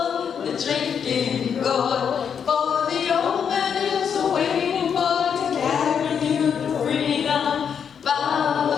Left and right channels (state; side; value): quieter; right; 7.4 dB